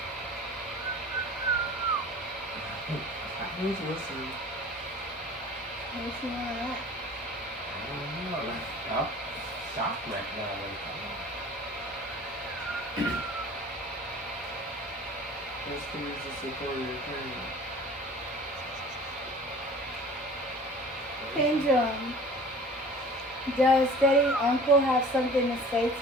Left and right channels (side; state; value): both; normal; correlation 0.44